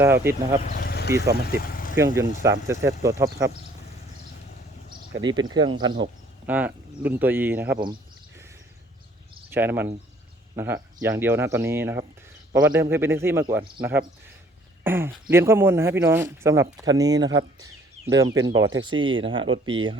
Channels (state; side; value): normal; both; correlation 0.58